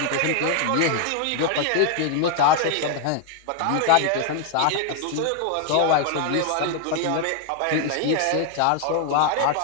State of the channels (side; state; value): both; different; correlation 0.00